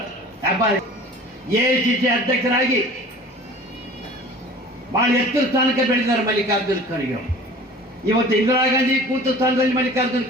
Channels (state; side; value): normal; both; correlation 0.43